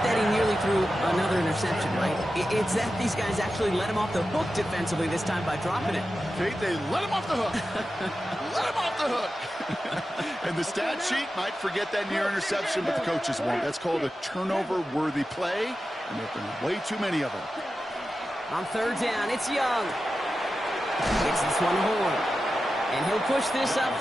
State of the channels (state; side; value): normal; both; correlation 0.92